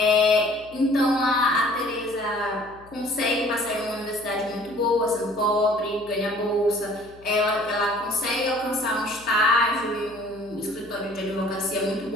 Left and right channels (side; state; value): left; noise; hum, 25 dB below the sound